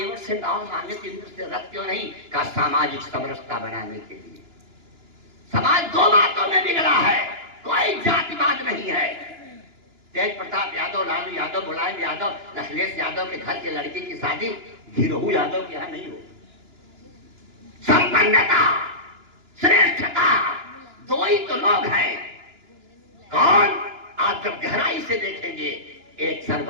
से नाव मांगे तो इंद्र से रथ क्यों नहीं? कहा सामाजिक समरसता बनाने के लिए। समाज दो बातों में बिगड़ा है, कोई जातिवाद नहीं है। तेज प्रताप यादव, लालू यादव, मुलायम यादव, अखिलेश यादव के घर के लड़की की शादी गिरोह यादव के यहाँ नहीं हो। संपन्नता, श्रेष्ठता, दो ही तो लोग हैं। कौन? आप जब गहराई से देखेंगे, एक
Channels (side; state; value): left; late; 2.9 ms